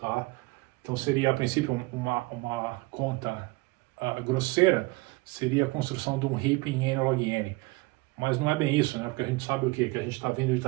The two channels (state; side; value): quieter; left; 23.8 dB